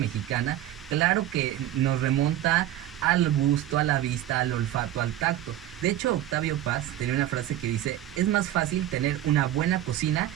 claro que nos remonta al gusto, a la vista, al olfato, al tacto. De hecho, Octavio Paz tenía una frase que dice: es más fácil tener una buena cocina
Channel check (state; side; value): quieter; left; 13.0 dB